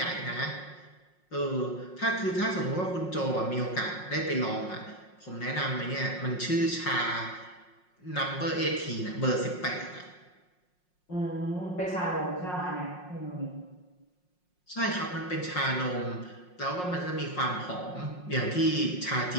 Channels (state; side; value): late; right; 5.5 ms